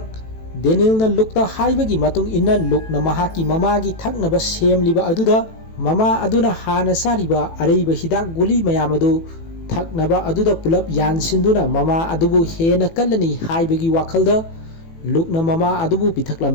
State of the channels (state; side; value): late; right; 18 ms